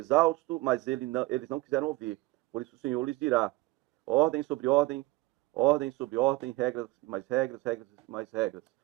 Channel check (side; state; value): left; quieter; 20.8 dB